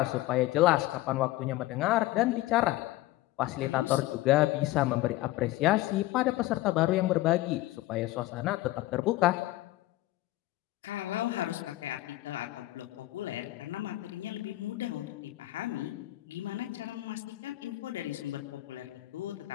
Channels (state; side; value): quieter; right; 17.1 dB